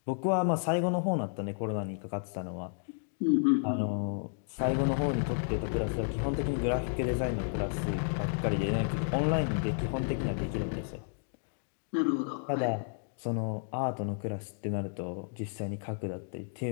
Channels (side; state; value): right; silent; digital silence